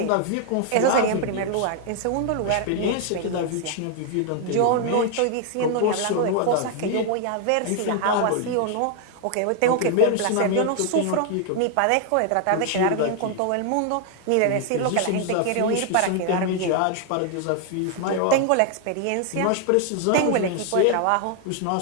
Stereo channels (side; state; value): both; different; correlation 0.00